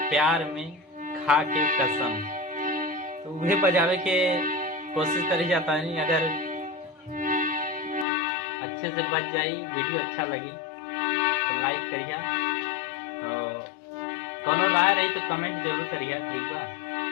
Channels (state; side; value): drops out; right; at 8.1 s